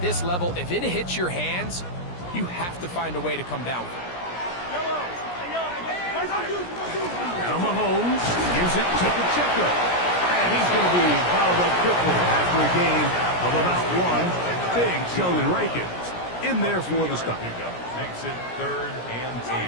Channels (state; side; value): late; right; 17 ms